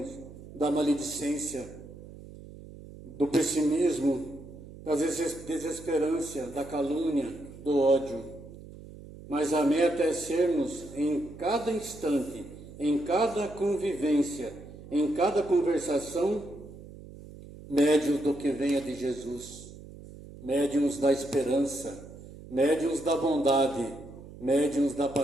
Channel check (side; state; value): right; noise; hum, 16 dB below the sound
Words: da maledicência, do pessimismo, da desesperança, da calúnia, do ódio. Mas a meta é sermos, em cada instante, em cada convivência, em cada conversação, médiuns do que venha de Jesus, médiuns da esperança, médiuns da bondade, médiuns da